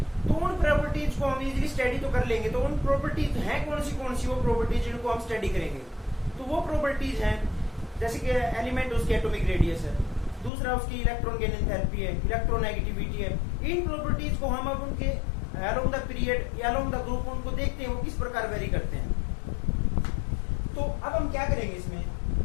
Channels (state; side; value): drops out; right; at 10.5 s